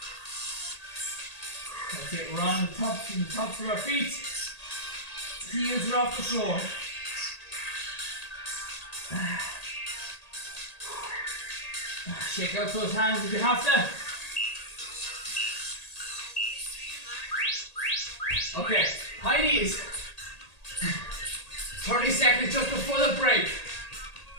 That's it, we're on the tops of our feet. Heels are off the floor. Shake out those hands if you have to. Okay, high knees. 30 seconds just before the break.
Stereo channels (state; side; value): late; right; 1.8 ms